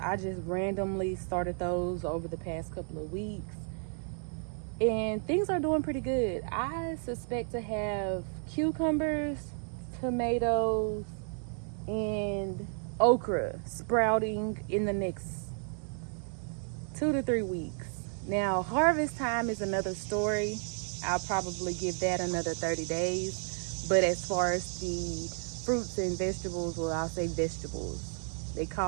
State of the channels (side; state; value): left; silent; 56 dB below the other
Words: just randomly started those over the past couple of weeks. And things are doing pretty good. I suspect to have cucumbers, tomatoes, and okra sprouting in the next 2 to 3 weeks. Now, harvest time is another story. I'll probably give that another 30 days. But as far as the fruits and vegetables, well, I'll say vegetables. They